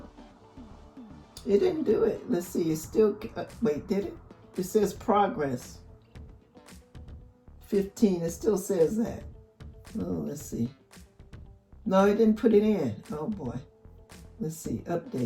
It didn't do it. Let's see, it's still, wait, did it? It says progress. 15, it still says that. Oh, let's see. No, it didn't put it in. Oh boy. Let's see,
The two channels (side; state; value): both; identical; correlation 1.00